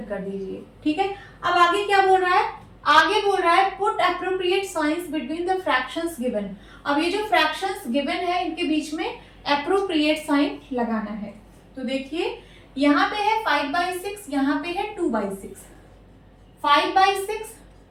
कर दीजिए। ठीक है, अब आगे क्या बोल रहा है? आगे बोल रहा है put appropriate signs between the fractions given. अब ये जो फ्रैक्शंस गिवन है इनके बीच में एप्रोप्रिएट साइन लगाना है। तो देखिए यहाँ पे है 5/6, यहाँ पे है 2/6, 5/6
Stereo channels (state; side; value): identical; both; correlation 1.00